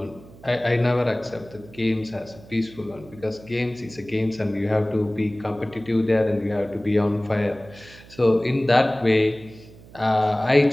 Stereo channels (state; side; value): noise; right; hum, 21 dB below the sound